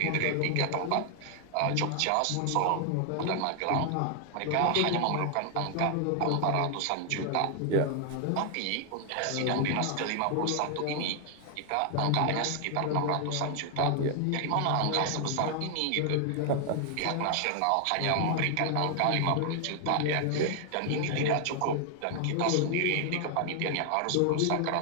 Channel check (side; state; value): both; different; correlation 0.00